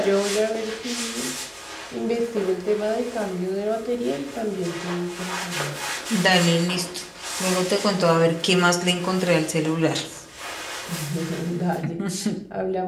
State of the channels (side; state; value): both; identical; correlation 1.00